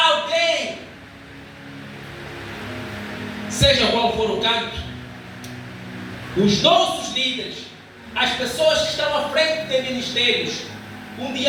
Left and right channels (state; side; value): identical; both; correlation 1.00